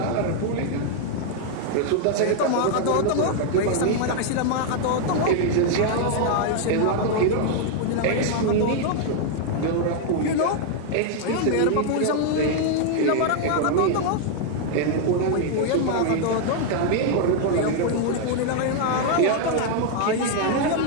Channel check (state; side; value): different; both; correlation 0.00